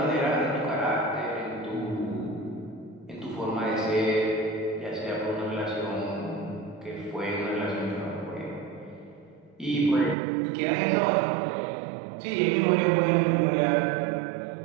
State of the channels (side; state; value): left; drops out; at 10.2 s